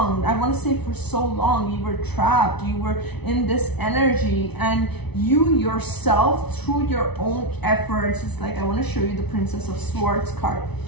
I want to say for so long, you were trapped, you were in this energy, and you yourself, through your own efforts, it's like, I want to show you the Princess of Swords card.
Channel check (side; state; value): right; late; 0.99 ms